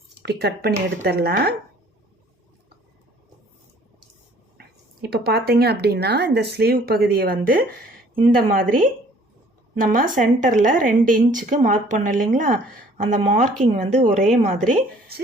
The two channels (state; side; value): normal; both; correlation 0.56